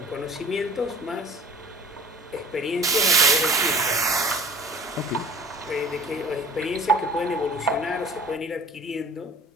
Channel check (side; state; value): both; normal; correlation 0.44